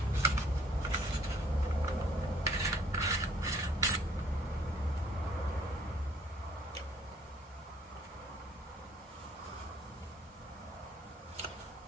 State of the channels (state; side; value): normal; both; correlation 0.60